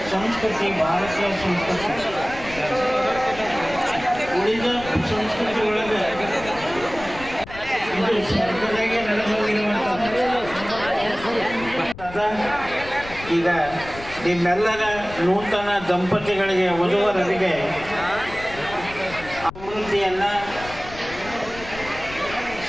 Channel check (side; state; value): left; noise; rumble, 15 dB below the sound